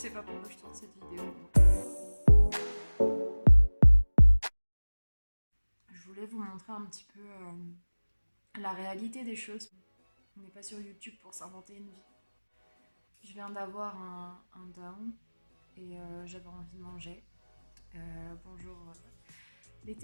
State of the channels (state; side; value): inverted; both; correlation -1.00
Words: pas pourquoi je tourne cette vidéo. Je voulais vous montrer un petit peu la réalité des choses. On n'est pas sur YouTube pour s'inventer une vie. Je viens d'avoir un down et j'avais envie de manger. Bonjour les